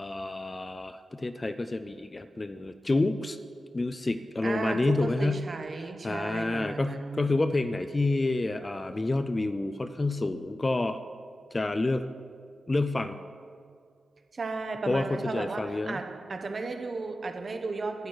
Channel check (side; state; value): both; normal; correlation 0.95